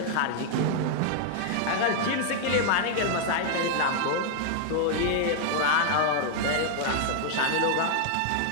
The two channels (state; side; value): different; both; correlation 0.00